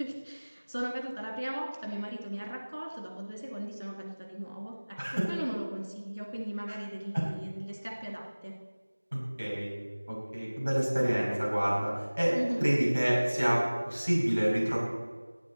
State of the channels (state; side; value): inverted; both; correlation -1.00